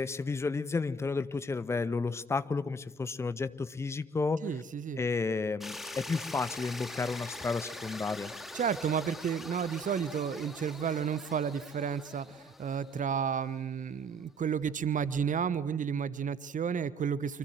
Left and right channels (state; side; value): normal; both; correlation 0.57